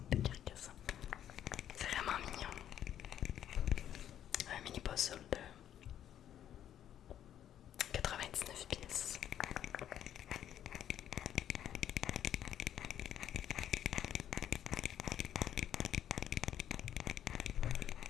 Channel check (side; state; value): right; quieter; 10.6 dB